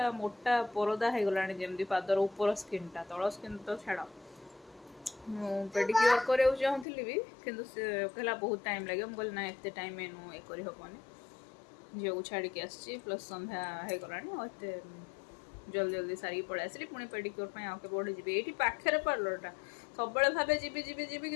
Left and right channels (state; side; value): drops out; right; at 6.9 s